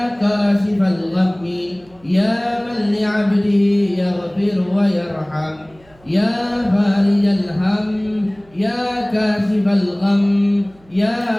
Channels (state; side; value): noise; right; hum, 29 dB below the sound